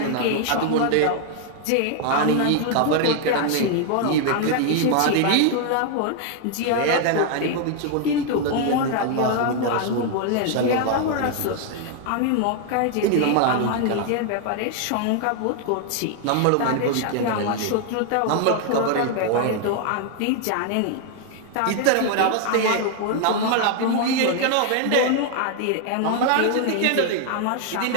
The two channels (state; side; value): different; both; correlation 0.00